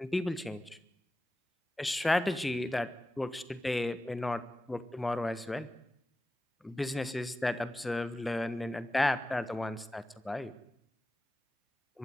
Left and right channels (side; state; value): both; normal; correlation 0.95